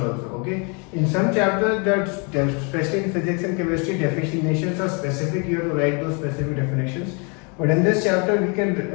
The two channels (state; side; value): quieter; right; 34.1 dB